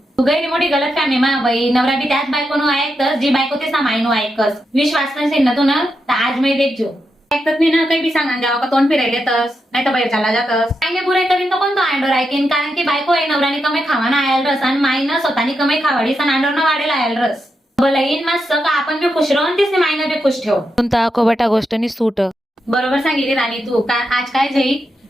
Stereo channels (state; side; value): normal; both; correlation 0.85